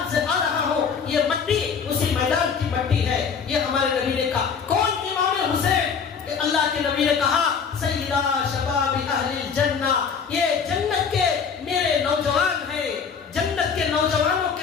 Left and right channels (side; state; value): right; quieter; 6.3 dB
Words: سے آ رہا ہوں، یہ مٹی اسی میدان کی مٹی ہے. یہ ہمارے نبی نے کہا. کون امام حسین؟ اللہ کے نبی نے کہا سیدہ شباب اہل الجنہ، یہ جنت کے میرے نوجوان ہیں، جنت کے نوجوانوں